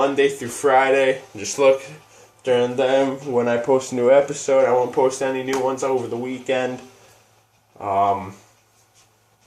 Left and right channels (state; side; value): identical; both; correlation 1.00